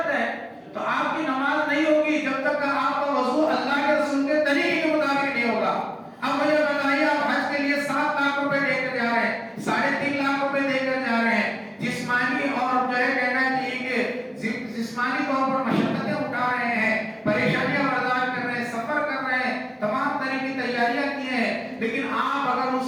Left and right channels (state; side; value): identical; both; correlation 1.00